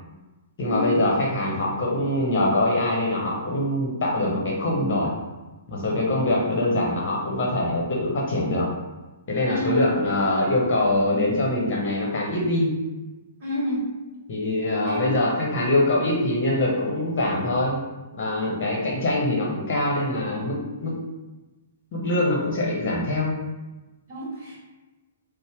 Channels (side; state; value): both; inverted; correlation -0.45